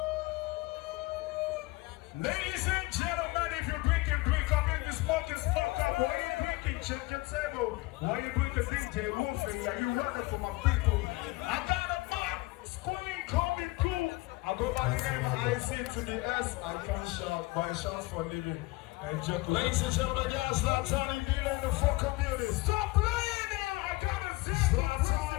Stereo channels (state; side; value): quieter; right; 21.9 dB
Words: Ladies and gentlemen, if you're drinking, drink up. If you're smoking, smoke up. Why you drinking? Check your table. Why you drinking DJ Wolfie? Are you running for my people? I got a mic screen coming through. I go by the name of IC to the S. I can't shout, buy shots for a living. And joke. Ladies and gentlemen, y'all Zlatan in the fucking building. Stop playing now! I gotta see Zlatan